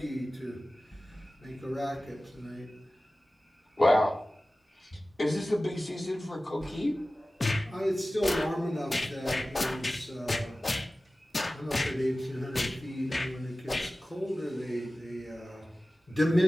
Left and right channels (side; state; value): both; normal; correlation 0.96